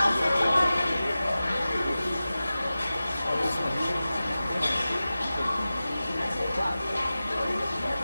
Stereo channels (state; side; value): inverted; both; correlation -0.95